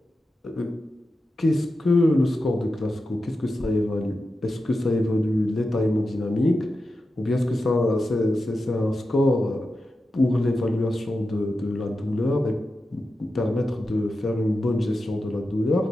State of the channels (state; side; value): normal; both; correlation 0.91